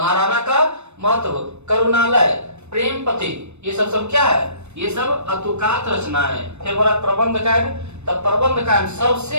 का महत्व, करुणालय, प्रेम पति, ये सब क्या है? ये सब अतुकात रचनाएं है। फिर बोला प्रबंध काव्य, तब प्रबंध काव्य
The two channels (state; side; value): late; left; 0.81 ms